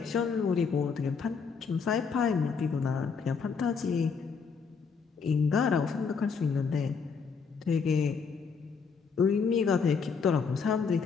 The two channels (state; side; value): quieter; right; 5.5 dB